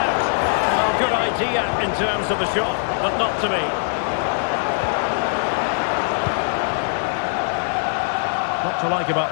Well, good idea in terms of the shot, but not to be. What to like about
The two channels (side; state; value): right; silent; digital silence